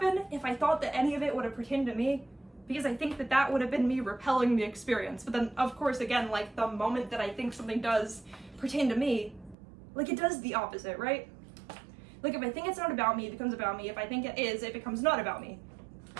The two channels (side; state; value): left; drops out; at 9.6 s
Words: if I thought that any of it would have pertained to me. Because I think that would have been me repelling the experience. But then, of course, again, like, the moment that I think something does pertain to me, like, it does the opposite, right? Like, if I think it's not about me, it becomes about me. If I think it is, it becomes not about me.